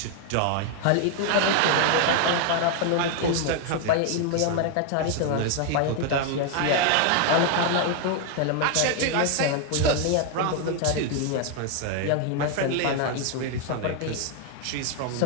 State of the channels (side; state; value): both; different; correlation 0.01